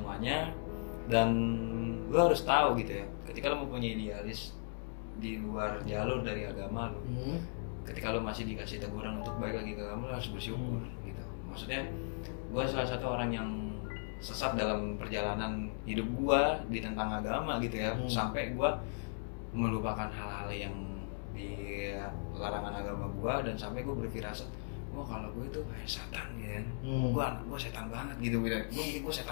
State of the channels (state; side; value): silent; right; digital silence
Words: Dan lo harus tahu gitu ya, ketika lo mempunyai idealis di luar jalur dari agama lo, ketika lo masih dikasih teguran untuk balik lagi ke agama, lo harus bersyukur gitu. Maksudnya gue salah satu orang yang sesat dalam perjalanan hidup gue di tentang agama gitu ya, sampai gue melupakan hal-hal yang di larangan agama gue, dan sampai gue berfirasat, wah kalau gue itu kayak setan ya, gue setan banget gitu, gue mikir gue